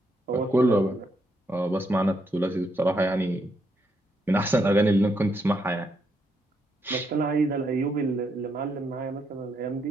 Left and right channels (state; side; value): normal; both; correlation 0.78